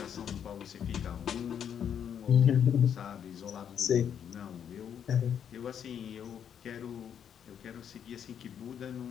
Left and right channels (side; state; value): right; quieter; 8.5 dB